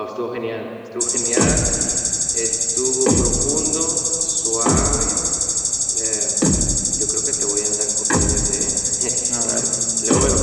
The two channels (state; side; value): identical; both; correlation 1.00